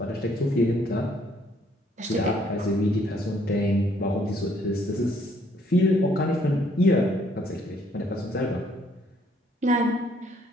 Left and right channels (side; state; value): both; normal; correlation 0.66